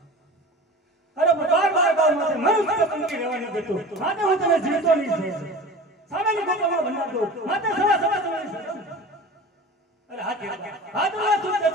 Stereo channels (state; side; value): normal; both; correlation 0.36